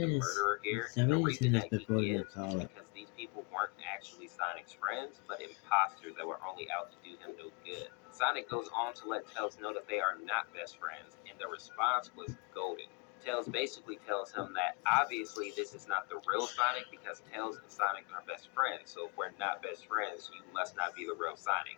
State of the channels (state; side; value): quieter; right; 31.6 dB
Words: the murderer here, and the somebody reason seen this that he before the is call it. because these people weren't actually Sonic's friends, but imposters that were only out to do him no good. Sonic goes on to let Tails know that they are not best friends, and the response was golden. Tails basically tells him that obviously this is not the real Sonic because Tails and Sonic are best friends. So if we're not best friends, you must not be the real Sonic.